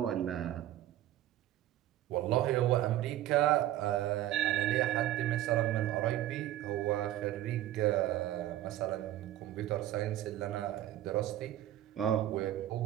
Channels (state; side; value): quieter; left; 13.6 dB